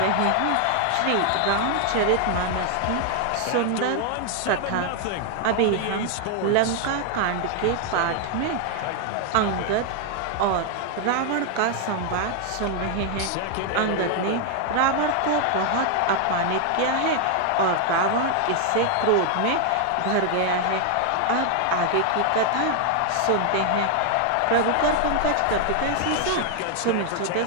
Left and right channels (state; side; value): different; both; correlation 0.00